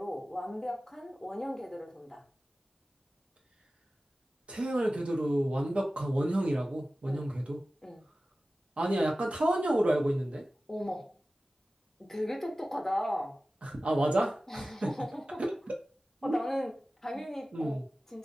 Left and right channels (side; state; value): both; normal; correlation 0.96